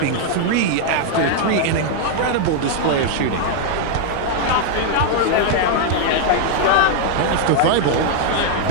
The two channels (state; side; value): different; both; correlation 0.00